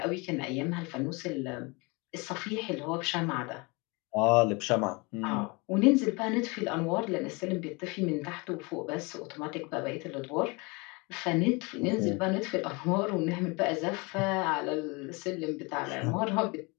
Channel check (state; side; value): quieter; right; 27.8 dB